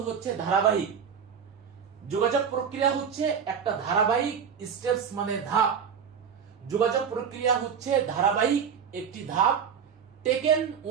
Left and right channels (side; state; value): left; quieter; 7.2 dB